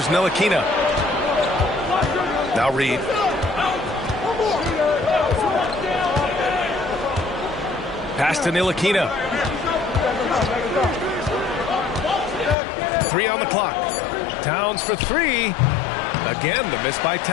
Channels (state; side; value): drops out; right; at 12.6 s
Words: Ntilikina. Now Reed. Pass to Ntilikina. 3 on the clock. Towns for 3. Again, the miss by